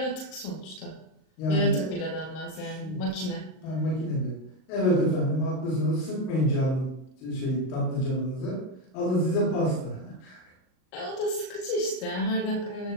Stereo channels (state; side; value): late; right; 38 ms